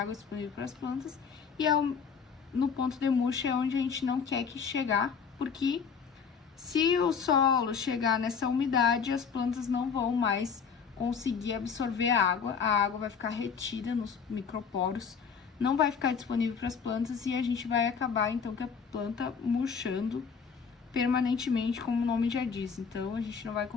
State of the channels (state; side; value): quieter; right; 6.2 dB